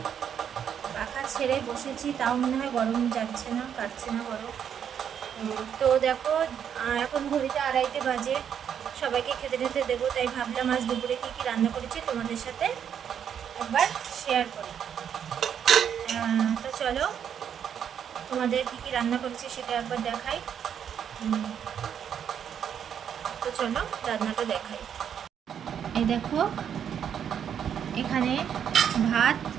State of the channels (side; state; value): left; quieter; 8.5 dB